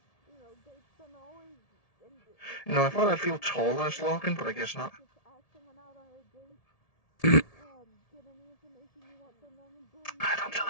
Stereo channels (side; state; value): right; late; 1.7 ms